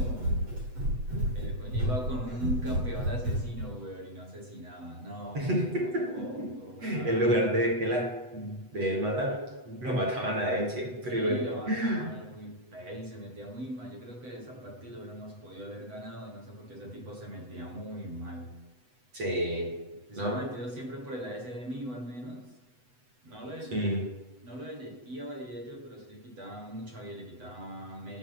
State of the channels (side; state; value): left; late; 8.0 ms